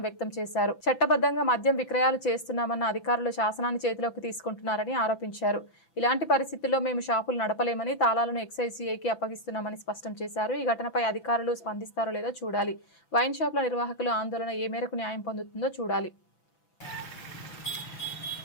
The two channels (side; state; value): right; late; 6.0 ms